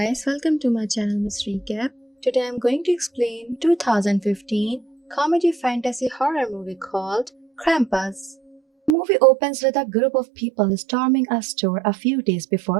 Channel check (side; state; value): left; drops out; at 9.0 s